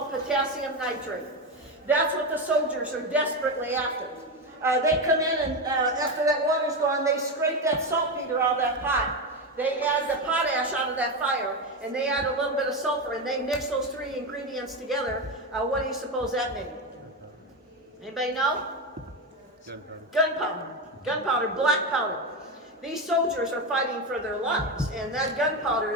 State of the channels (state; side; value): normal; both; correlation 0.14